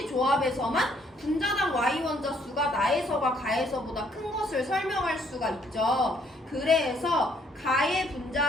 조합에서만 분자당 Y 원자수가 나에서가 가에서보다 큰 것을 설명할 수가 있죠. 그래서 가의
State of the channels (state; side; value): normal; both; correlation 0.66